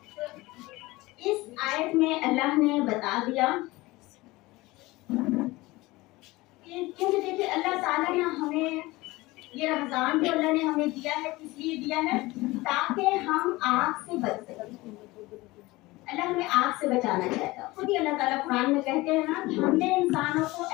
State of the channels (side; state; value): right; quieter; 20.6 dB